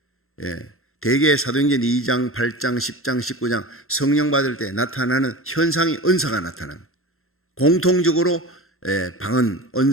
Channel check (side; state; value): right; late; 0.62 ms